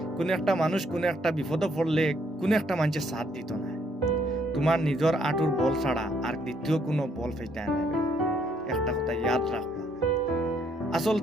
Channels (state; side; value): normal; both; correlation 0.69